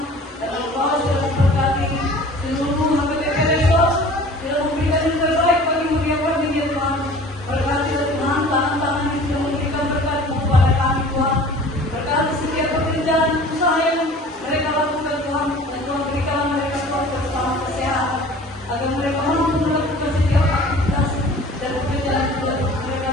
Dan Engkau sudah memberkati seluruh HPP besok. Sudah memberikan yang terbaik bagi mulia kami ya Tuhan. Berkati Tuhan, tangan-tangan yang sudah memberikan berkat kepada kami Tuhan. Berkati setiap pekerjaan usaha yang mereka lakukan Tuhan. Dan Tuhan berikan mereka Tuhan bersama kesehatan. Agar mereka mampu melakukan setiap aktivitas dan pekerjaan mereka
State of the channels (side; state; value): both; normal; correlation 0.45